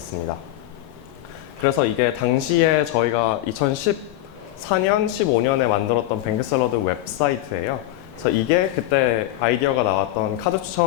그래서 이게 당시에 저희가 2014년, 15년에 만들었던 뱅크샐러드 웹사이트예요. 그래서 이게 그때 아이디어가 나왔던 카드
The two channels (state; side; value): quieter; right; 14.8 dB